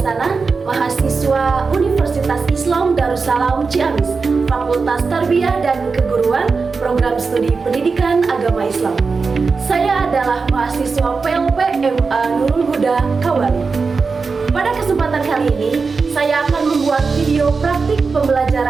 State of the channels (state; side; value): quieter; left; 4.7 dB